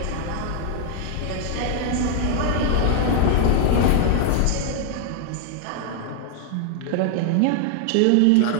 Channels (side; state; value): both; different; correlation 0.00